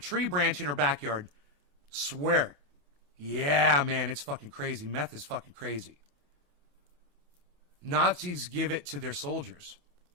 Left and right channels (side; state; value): left; late; 28 ms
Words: branch in her backyard. Swear. Yeah, man, it's fucking crazy. Meth is fucking crazy. Nazis give it to their soldiers.